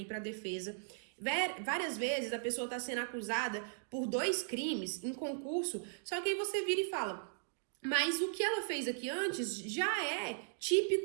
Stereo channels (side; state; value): left; silent; digital silence